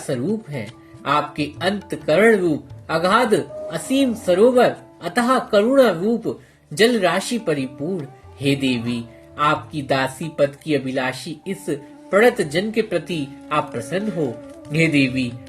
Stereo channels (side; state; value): both; identical; correlation 1.00